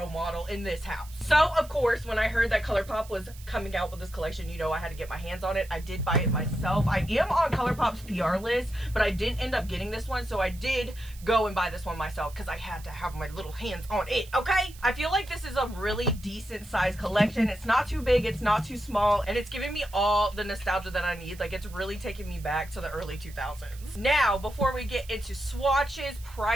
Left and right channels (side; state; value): right; noise; hiss, 20 dB below the sound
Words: model in this house. So, of course, when I heard that Colourpop was coming out with this collection, you know I had to get my hands on it. I did buy it myself. I am on Colourpop's PR list, but I didn't end up getting this one, so I did go and buy this one myself because I had to have my little hands on it, okay? I feel like this is a really decent size collection. It's not too big, it's not too small, and it's giving me all the nostalgia that I need. Like, it's really taking me back to the early 2000s. Now, before we get into swatches,